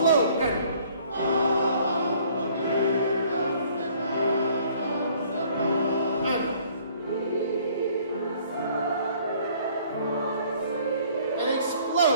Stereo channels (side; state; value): both; inverted; correlation -0.58